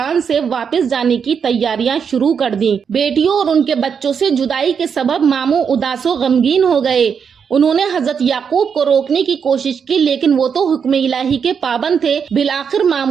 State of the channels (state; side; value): quieter; left; 6.7 dB